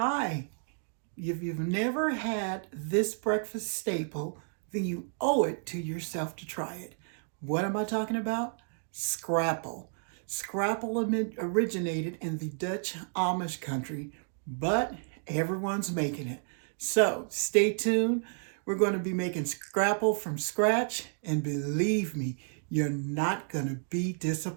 if you've never had this breakfast staple, then you owe it to yourself to try it. What am I talking about? Scrapple. Scrapple originated in the Dutch Amish country, but everyone's making it. So stay tuned. We're going to be making Scrapple from scratch, and believe me, you're not going to be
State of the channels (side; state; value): left; silent; 57 dB below the other